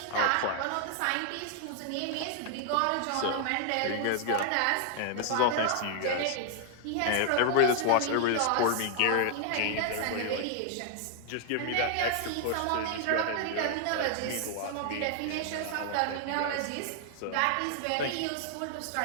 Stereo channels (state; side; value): different; both; correlation 0.00